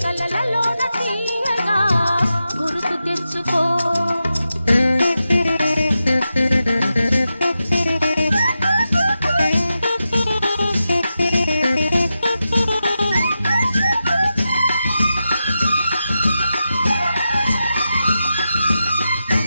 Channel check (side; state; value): both; inverted; correlation -0.89